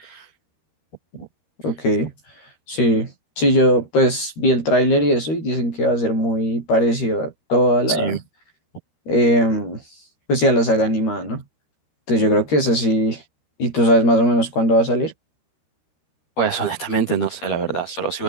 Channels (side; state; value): right; late; 13 ms